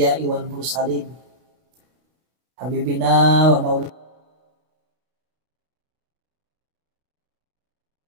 wal mursalin. Habibina wa maulana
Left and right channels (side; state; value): left; late; 32 ms